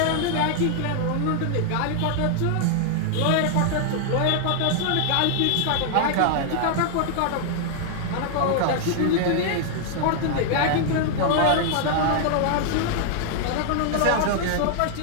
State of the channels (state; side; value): different; both; correlation -0.01